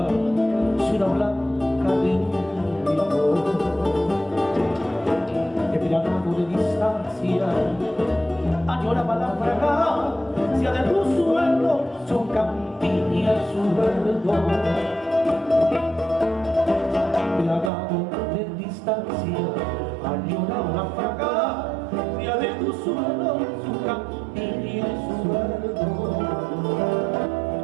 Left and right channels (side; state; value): left; drops out; at 17.7 s